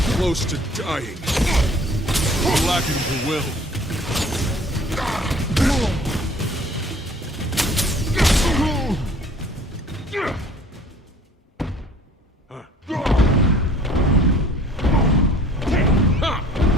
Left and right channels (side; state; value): both; normal; correlation 0.51